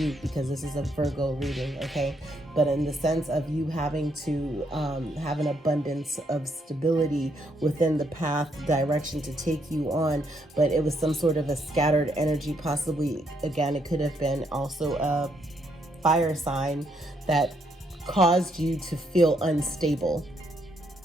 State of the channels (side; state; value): both; normal; correlation 0.74